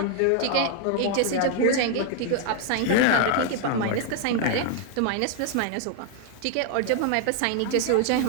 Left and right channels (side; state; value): both; different; correlation 0.00